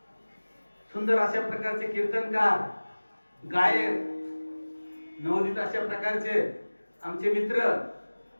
सुंदर अशा प्रकारचे कीर्तनकार, गायक, नवोदित अशा प्रकारचे आमचे मित्र,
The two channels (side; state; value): both; inverted; correlation -1.00